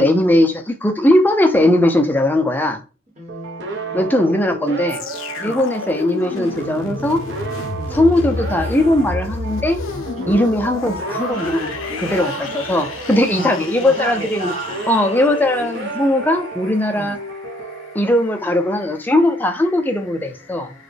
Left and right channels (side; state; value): both; normal; correlation 0.72